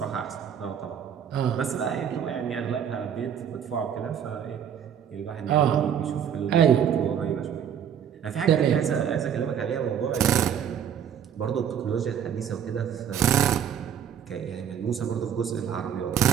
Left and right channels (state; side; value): quieter; left; 8.7 dB